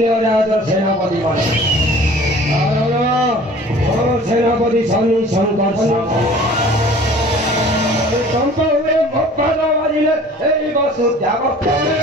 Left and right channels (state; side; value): normal; both; correlation 0.47